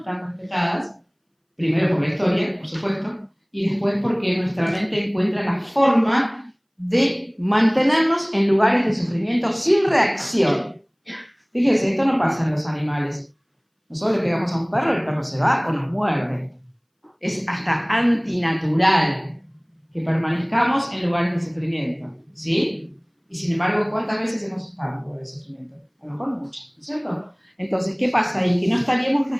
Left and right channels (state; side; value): identical; both; correlation 1.00